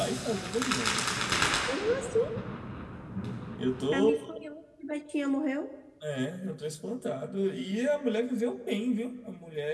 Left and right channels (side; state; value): both; identical; correlation 1.00